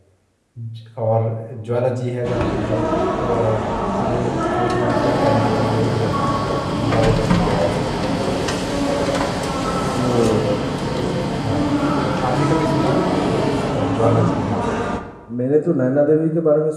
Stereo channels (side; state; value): both; identical; correlation 1.00